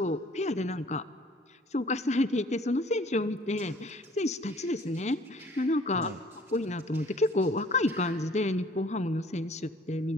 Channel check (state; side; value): normal; both; correlation 0.54